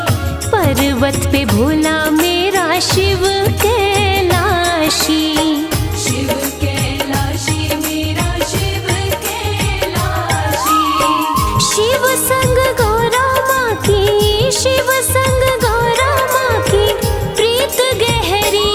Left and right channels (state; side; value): identical; both; correlation 1.00